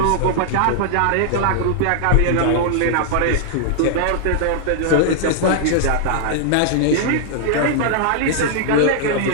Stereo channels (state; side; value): different; both; correlation -0.01